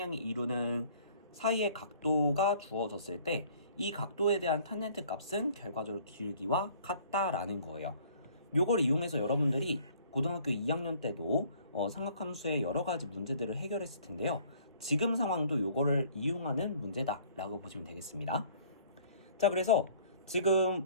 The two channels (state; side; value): inverted; both; correlation -0.55